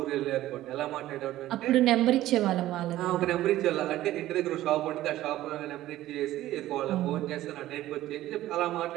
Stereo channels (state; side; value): quieter; left; 14.8 dB